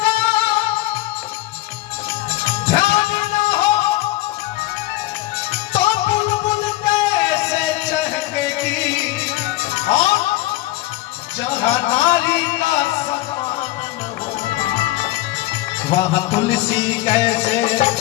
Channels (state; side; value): quieter; right; 17.1 dB